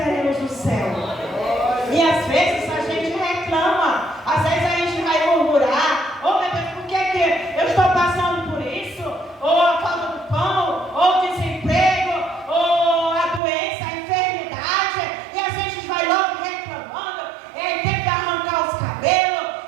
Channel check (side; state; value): left; drops out; at 13.4 s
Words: o céu. E às vezes a gente reclama, às vezes a gente vai murmurar: oh meu Deus, por que eu estou passando por isso? Ou a falta do pão, ou o desemprego, ou a doença, a enfermidade, e a gente vai logo reclamando, tem que arrancar os cabelos,